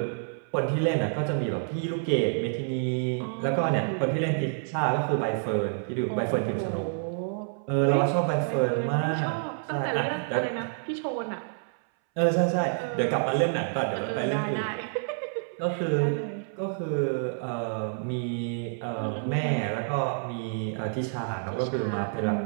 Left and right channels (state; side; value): silent; left; 59 dB below the other